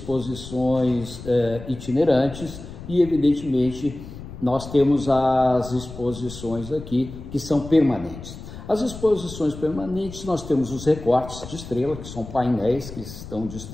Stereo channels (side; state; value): left; noise; rumble, 13 dB below the sound